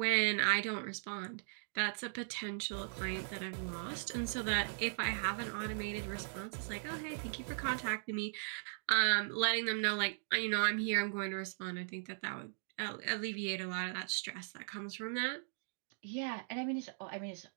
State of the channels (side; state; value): left; silent; digital silence